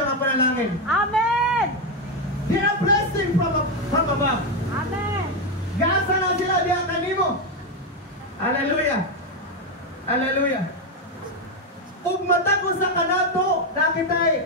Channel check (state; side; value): normal; both; correlation 0.07